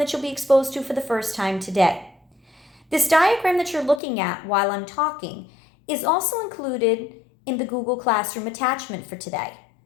you'll be exposed to for the first time today. This diagram that you're looking at while I'm talking is also included in the Google Classroom attachment for today.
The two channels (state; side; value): drops out; right; at 4.0 s